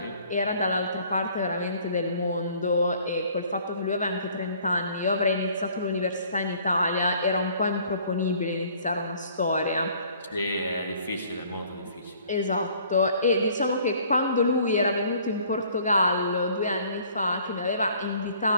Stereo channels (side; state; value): both; inverted; correlation -0.56